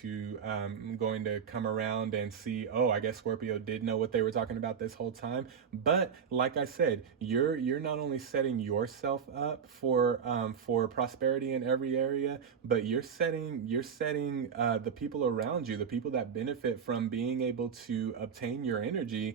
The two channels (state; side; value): quieter; left; 6.9 dB